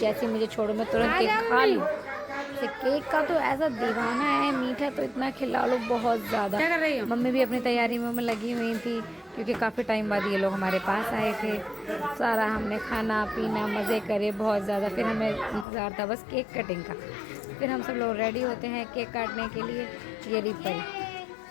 मुझे छोड़ो मैं तुरंत केक खा लूँ। इसे केक का तो ऐसा दीवाना है, मीठा तो इतना खिला लो बहुत ज़्यादा। मम्मी भी अपनी तैयारी में लगी हुई थी, क्योंकि काफ़ी टाइम बाद ये लोग हमारे पास आए थे। सारा हमने खाना पीना मज़े करे बहुत ज़्यादा। फिर हमें इंतज़ार था बस केक कटिंग का। फिर हम सब लोग रेडी होते हैं केक काटने के लिए। ये रिपर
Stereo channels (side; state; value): right; drops out; at 15.7 s